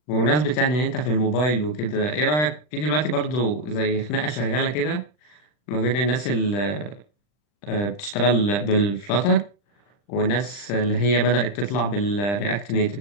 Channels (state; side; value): late; right; 40 ms